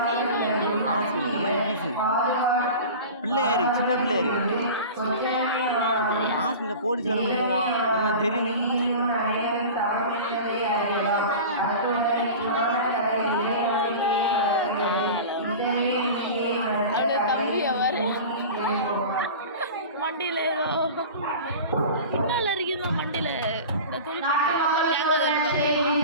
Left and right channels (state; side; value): inverted; both; correlation -0.34